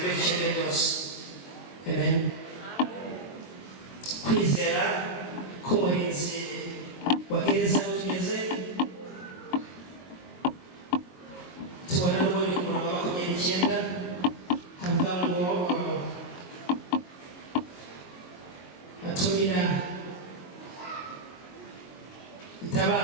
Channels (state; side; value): late; right; 22 ms